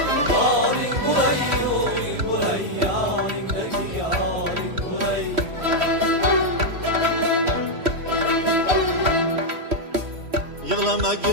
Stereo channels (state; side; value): late; left; 3.1 ms